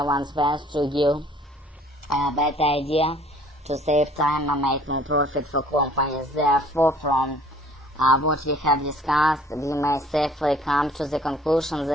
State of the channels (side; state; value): both; normal; correlation 0.55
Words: one's best to give a better idea, to save time and make more profit for companies. Therefore, from what we have discussed, we may safely come to the conclusion